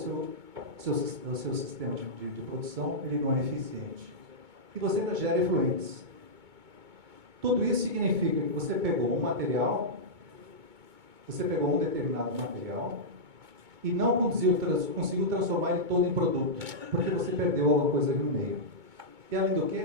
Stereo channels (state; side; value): late; left; 2.2 ms